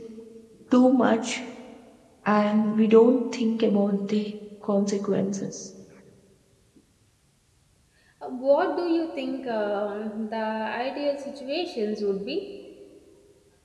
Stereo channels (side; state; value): both; identical; correlation 1.00